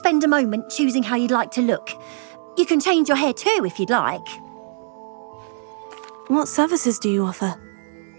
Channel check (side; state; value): left; silent; digital silence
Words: a moment choosing how you'd like to look? You can change your hair too if you'd like. What services do you offer?